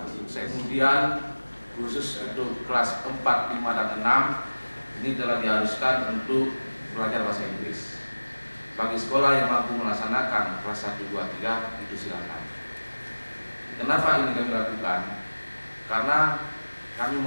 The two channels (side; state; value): both; inverted; correlation -1.00